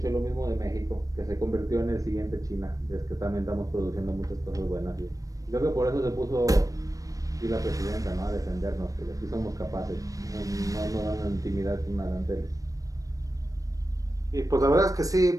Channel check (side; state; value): left; late; 0.16 ms